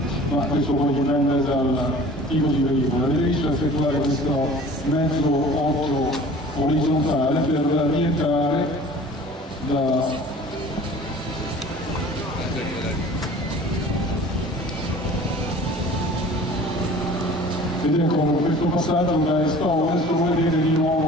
ma questo poi dipende dal tipo di veicolo. Avete visto effettuare questo mezzo 8 orizzontale per rientrare vedete con questo passaggio da est a ovest, come vedete di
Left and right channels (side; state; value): both; normal; correlation 0.45